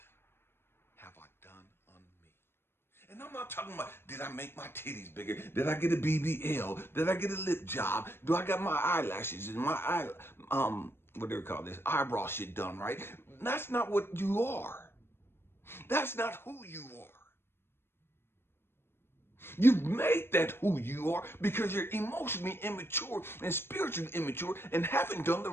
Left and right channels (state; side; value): late; right; 0.11 ms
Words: have I done on me? And I'm not talking about, did I make my titties bigger? Did I get a BBL? Did I get a lip job? Do I got my eyelashes and my what do they call this? Eyebrow shit done, right? That's not what you are. That's not who you are. You've made that who you are because you're emotionally immature and spiritually immature and haven't done the